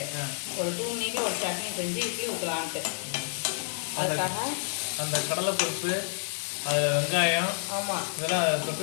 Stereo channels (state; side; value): silent; right; 59 dB below the other